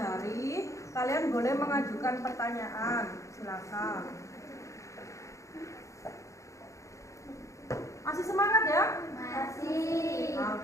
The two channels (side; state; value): right; late; 0.15 ms